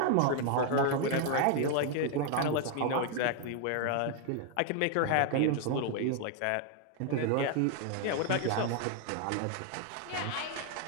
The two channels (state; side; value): different; both; correlation 0.00